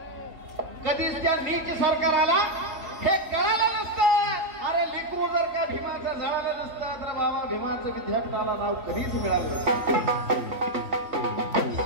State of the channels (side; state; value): left; late; 3.2 ms